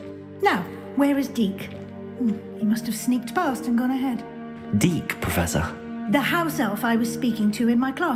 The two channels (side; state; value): both; identical; correlation 1.00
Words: Now, where is Deke? He must have sneaked past and gone ahead. Deke, Professor. The house elf I was speaking to in my